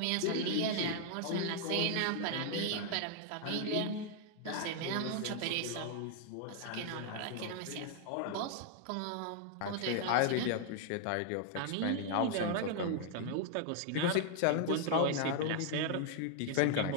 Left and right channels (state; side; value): different; both; correlation 0.00